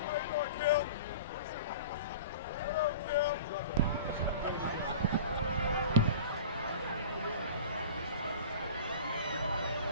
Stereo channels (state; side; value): inverted; both; correlation -0.38